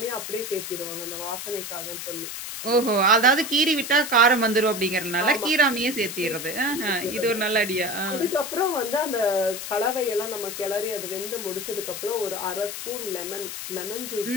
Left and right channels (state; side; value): noise; left; hiss, 7 dB below the sound